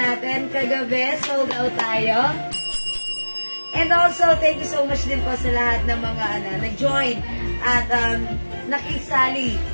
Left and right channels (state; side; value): inverted; both; correlation -1.00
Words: Kagabi, sold out tayo. And also, thank you so much din po sa lahat ng mga nag-join at nakisali